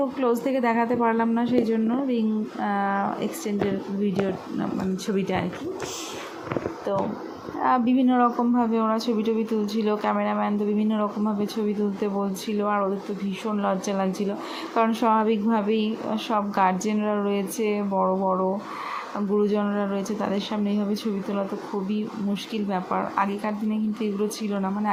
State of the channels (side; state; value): both; identical; correlation 1.00